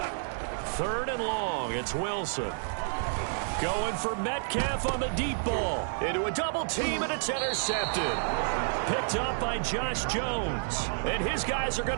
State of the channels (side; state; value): left; silent; digital silence